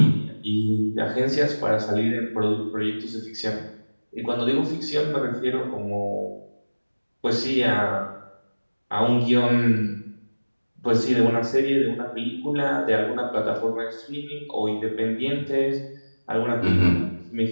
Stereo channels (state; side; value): inverted; both; correlation -1.00